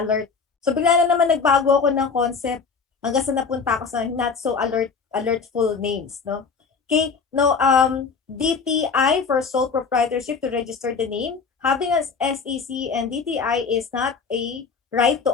So, bigla na naman nagbago ako ng concept hanggang sa napunta ako sa not so alertful names. No? Okay, no, DTI for sole proprietorship to register the name. Having an SEC and DTI is not a right to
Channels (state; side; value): quieter; right; 5.3 dB